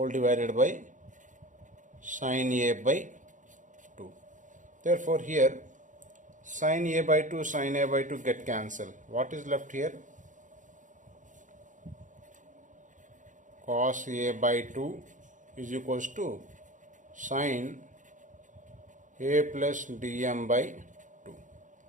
divided by sine A by 2. Therefore here sine A by 2 sine A by 2 get cancelled. What is left here? Cos A by 2 is equals to sine A plus dm by 2.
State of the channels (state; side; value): late; left; 0.37 ms